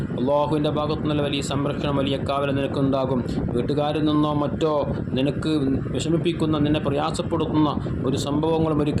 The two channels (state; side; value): identical; both; correlation 1.00